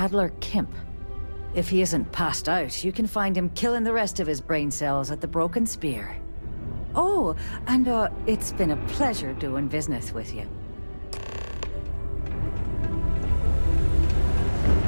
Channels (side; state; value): both; inverted; correlation -1.00